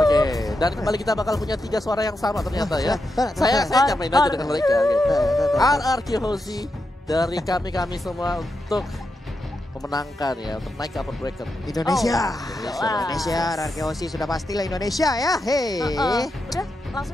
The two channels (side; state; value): both; normal; correlation 0.86